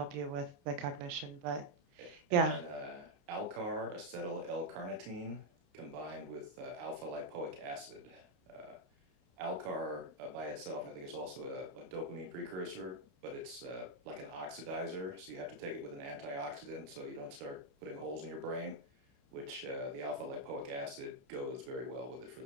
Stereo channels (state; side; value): late; left; 29 ms